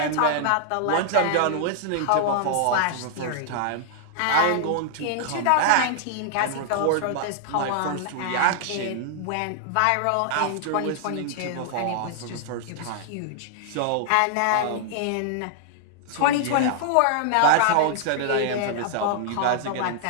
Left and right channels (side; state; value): both; different; correlation -0.01